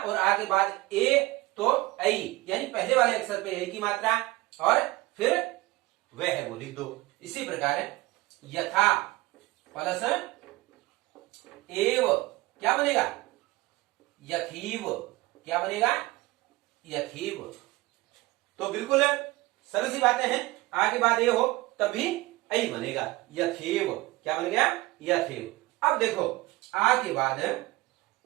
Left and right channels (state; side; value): quieter; left; 20.3 dB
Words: और आ के बाद ए तो ऐ, यानी पहले वाले अक्षर पे ए की मात्रा और फिर वह है वो लिख दो। इसी प्रकार यथा प्लस एव, क्या बनेगा? यथीव। क्या बनेगा? यथीव। तो बिल्कुल सरल सी बातें हैं। आ के बाद ए हो तब भी ऐ बनेगा, यथेव। क्या बन गया? यथेव। अब देखो, आ के बाद